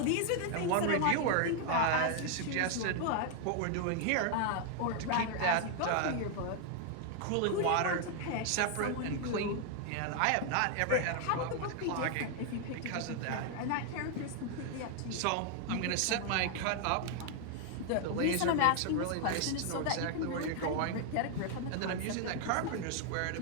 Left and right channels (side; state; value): both; different; correlation 0.00